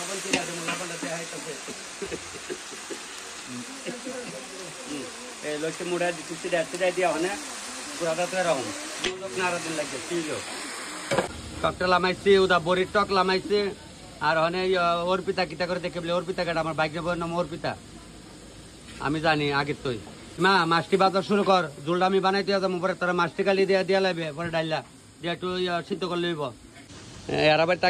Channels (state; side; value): identical; both; correlation 1.00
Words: কিনে আছে, লবণটা দেওয়া হইতেছে, এই লক্ষ্যে মুড়া সিটাই দিয়া মানে পুরাটা তো এরকম নাড়া দিন লাগছে ছিল। টকটা লামাইছি, ওটা বড়ির টক লামাইছে, আর অনেক অর্পিতা কিতা করে দেখে বলে অর্পিতা কাটা আমার বাইক যাবো নাম অর্পিতা, আমি জানি আগের তুই মা মাছটি বাজার শুরু কর, জোলটা আমি বানাইতে যাবো, পরে তোরা মাছটি কালি দিয়া লাগবে, পরে ডাইলা দিয়ে একটু সিদ্ধ করে লইব। এরা বাড়ি